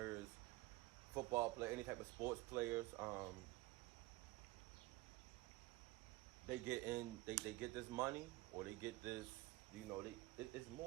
football players, any type of sports players, they get this money, or they get this, it's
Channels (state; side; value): quieter; left; 19.8 dB